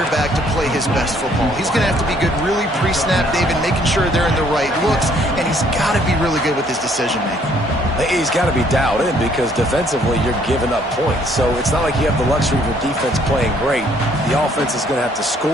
to play his best football. He's going to have to be good really pre-snap, David, making sure they're in the right looks, and he's got to be really good with his decision-making. He's got to be dialed in because defensively you're giving up points. So it's not like you have the luxury of your defense playing great. The offense is going to have to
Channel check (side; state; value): both; normal; correlation 0.63